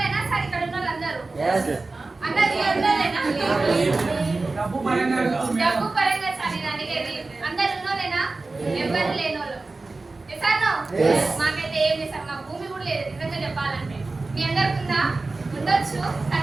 సార్? ఇక్కడ ఉన్న వాళ్ళందరూ అందరూ ఉన్నోలేనా? డబ్బు పరంగా సార్ నేను అడిగేది. అందరు ఉన్నోలేనా? ఎవరు లేనోళ్ళు? మాకైతే ఏం లేదు సార్, మా భూమి కూడా లేదు నిజంగా చెప్పాలంటే. మీ అందరికి ఉందా? ఉండొచ్చు,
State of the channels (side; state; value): left; quieter; 3.5 dB